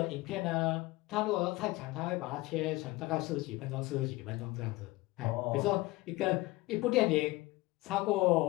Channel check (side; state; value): right; quieter; 20.4 dB